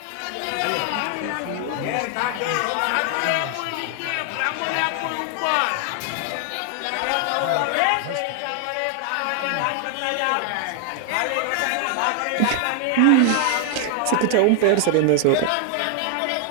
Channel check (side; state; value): both; different; correlation 0.00